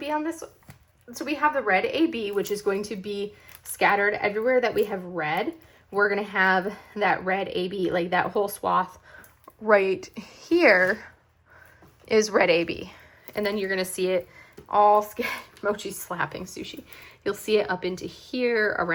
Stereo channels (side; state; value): both; identical; correlation 1.00